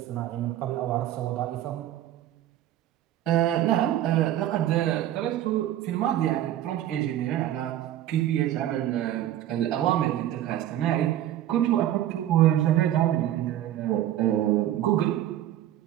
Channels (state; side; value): quieter; left; 12.5 dB